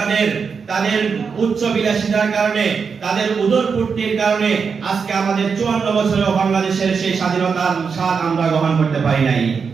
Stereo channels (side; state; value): left; quieter; 5.7 dB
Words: তাদের উচ্চ বিলাসিতার কারণে, তাদের উদরপূর্তির কারণে আজকে আমাদের 54 বছরেও বাংলাদেশের সেই স্বাধীনতার স্বাদ আমরা গ্রহণ করতে পারি নাই।